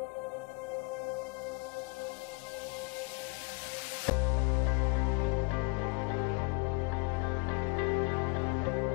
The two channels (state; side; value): quieter; right; 32.1 dB